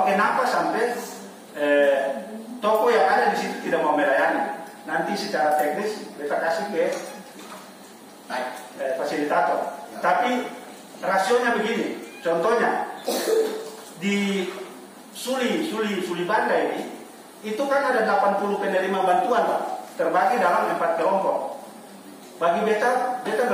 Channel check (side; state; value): both; identical; correlation 1.00